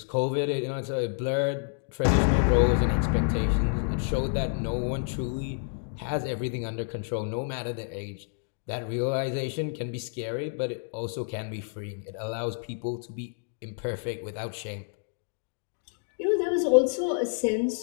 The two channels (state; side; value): silent; right; digital silence